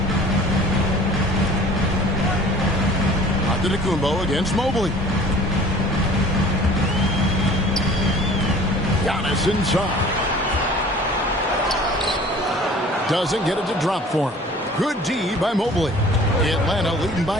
Antetokounmpo against Mobley. Giannis inside. Doesn't get it to drop for him. Good D by Mobley. Atlanta leading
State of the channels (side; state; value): both; normal; correlation 0.47